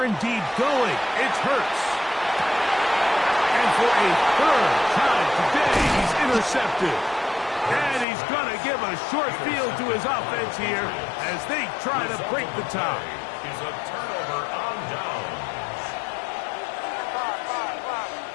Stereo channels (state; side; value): drops out; right; at 8.1 s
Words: indeed going. It's Hurts. And for a 3rd time today, he's intercepted. And he's going to give a short field to his offense here as they try to break the tie. Is a turnover on downs.